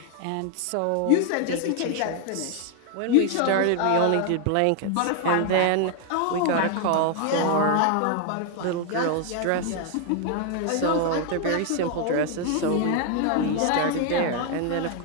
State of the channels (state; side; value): different; both; correlation 0.01